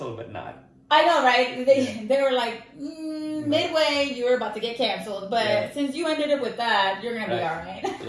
but not. I know, right? They were like, midway, you were about to get canceled. But since you ended up with that, you're going to be all right.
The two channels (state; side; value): identical; both; correlation 1.00